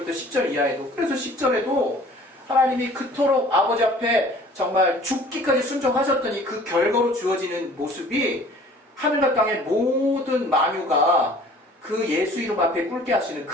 10절 이하에도, 그래서 10절에도 하나님이 그토록 아버지 앞에 정말 죽기까지 순종하셨더니 그 결과로 주어지는 모습이 하늘과 땅의 모든 만유가 그 예수 이름 앞에 꿇게 하시는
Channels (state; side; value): normal; both; correlation 0.50